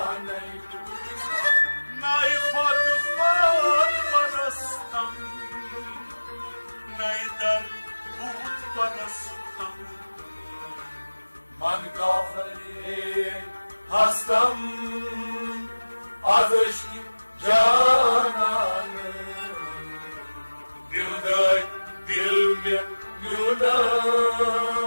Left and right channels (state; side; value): inverted; both; correlation -1.00